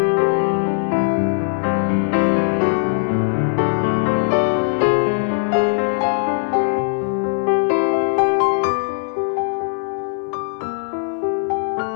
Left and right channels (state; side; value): silent; right; 66 dB below the other